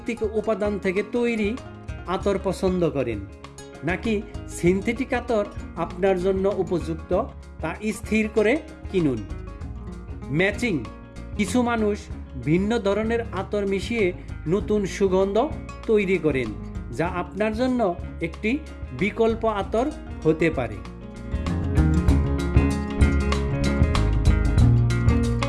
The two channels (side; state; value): both; identical; correlation 1.00